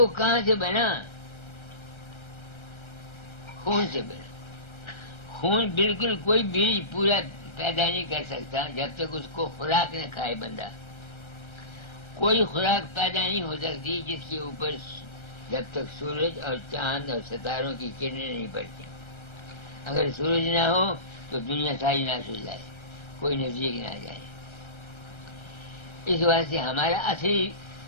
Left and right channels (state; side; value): late; right; 1.3 ms